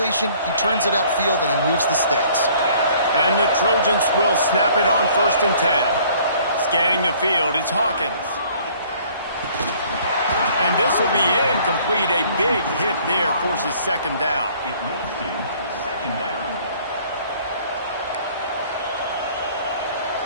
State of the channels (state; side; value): inverted; both; correlation -0.57